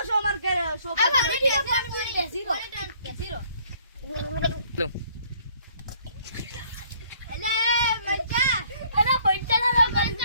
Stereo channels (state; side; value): inverted; both; correlation -0.61